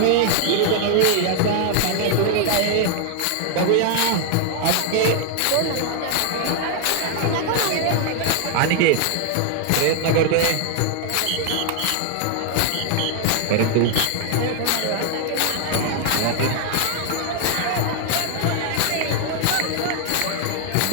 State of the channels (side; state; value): both; different; correlation 0.00